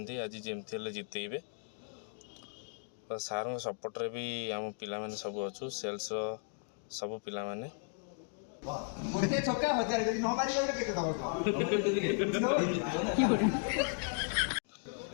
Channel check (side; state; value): right; silent; 54 dB below the other